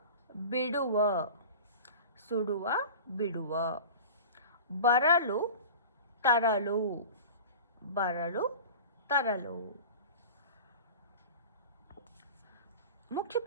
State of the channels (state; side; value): inverted; both; correlation -0.36